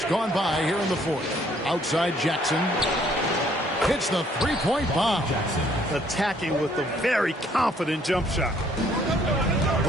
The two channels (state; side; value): normal; both; correlation 0.64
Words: gone by here in the fourth. Outside Jackson. Hits the three-point bomb. Attacking with a very confident jump shot.